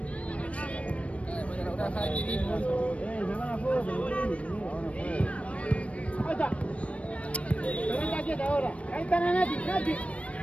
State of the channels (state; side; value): late; right; 0.063 ms